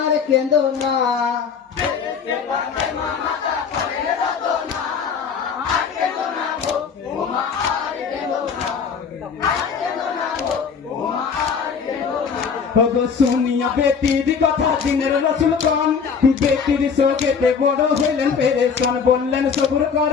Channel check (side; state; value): right; quieter; 6.2 dB